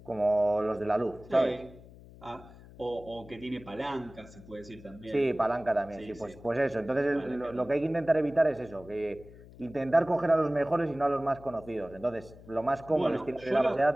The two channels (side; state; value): left; noise; hum, 20 dB below the sound